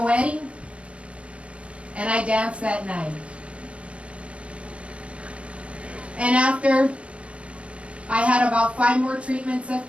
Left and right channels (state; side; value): late; left; 0.061 ms